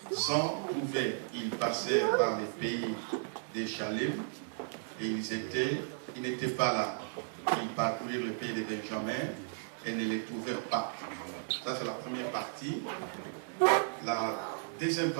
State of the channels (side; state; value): left; silent; 55 dB below the other